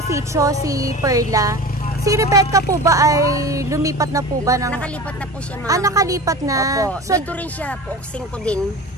sitio, si Perla. Si Rebecca po ba ay lumipat na po ba? Nakalipat na po siya, ma'am. Nakalipat na. Opo. So, dito rin siya, Pook 5 din.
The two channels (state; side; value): normal; both; correlation 0.33